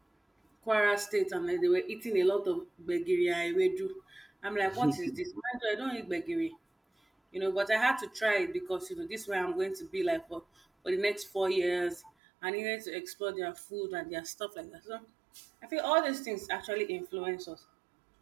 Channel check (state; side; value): drops out; left; at 12.1 s